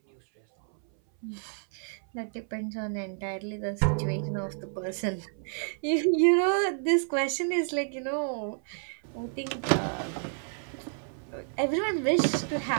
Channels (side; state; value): left; silent; 58 dB below the other